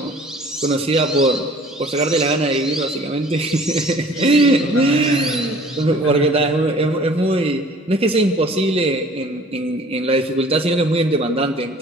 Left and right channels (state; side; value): normal; both; correlation 0.50